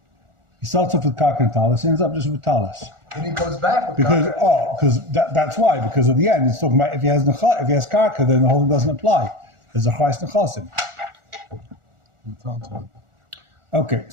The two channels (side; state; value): left; late; 1.4 ms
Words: He starts off with Karka and Talis, ends up just with Talis. Then he comes back with Because Karka. that's why, because at the end it's talking about if he has Karka, then the whole thing doesn't apply. There's a Chayes Nechasim. Okay,